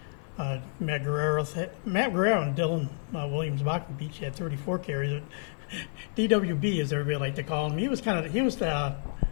Matt Guerrero and Dylan Williams-Bachman each had 34 carries. DWB, as everybody like to call him, he was the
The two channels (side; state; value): right; silent; digital silence